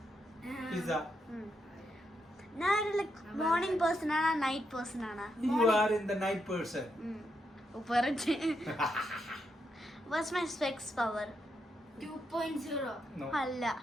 Pizza. Now like morning person or night person? You are in the night person. What's my specs power? 2.0. No. Alla.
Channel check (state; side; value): normal; both; correlation 0.81